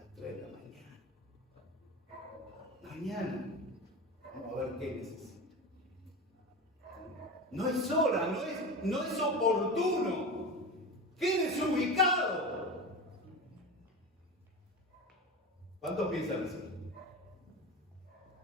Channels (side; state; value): both; normal; correlation 0.27